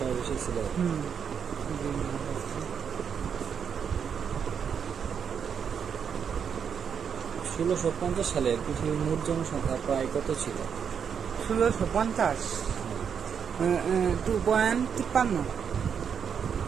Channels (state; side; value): quieter; left; 7.2 dB